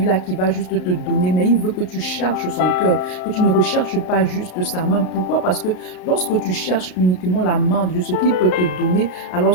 qui va juste te donner, mais il veut que tu cherches son cœur, que tu ne recherches pas juste sa main. Pourquoi? Parce que lorsque tu cherches uniquement la main de Dieu, ce qu'il peut te donner,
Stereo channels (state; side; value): late; right; 33 ms